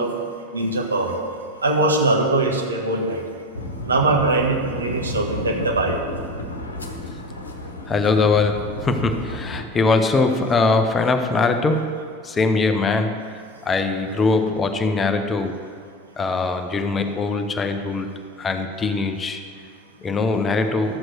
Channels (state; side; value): normal; both; correlation 0.32